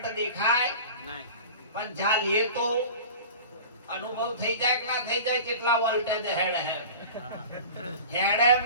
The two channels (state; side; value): inverted; both; correlation -0.38